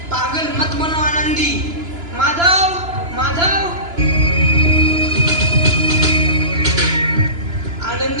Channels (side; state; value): left; late; 2.9 ms